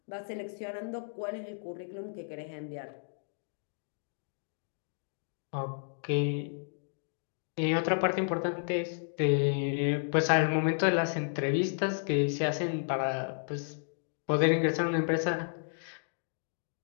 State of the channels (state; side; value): silent; right; digital silence